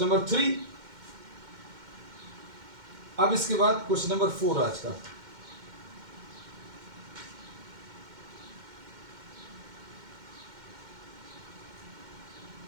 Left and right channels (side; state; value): left; late; 2.1 ms